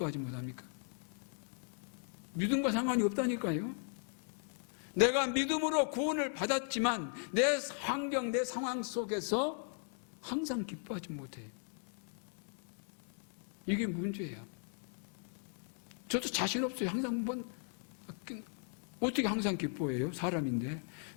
못하니까? 믿음과 상관이 없다니까요. 믿음으로 구원을 받았지만 내 환경, 내 상황 속에서 항상 기뻐하지 못해. 이게 문제예요. 저도 자신 없어요. 항상 어떻게 항상 기뻐해요? 사람인데.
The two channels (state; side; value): silent; right; 53 dB below the other